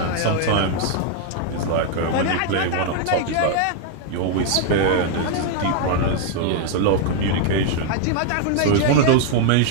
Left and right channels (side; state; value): both; different; correlation 0.00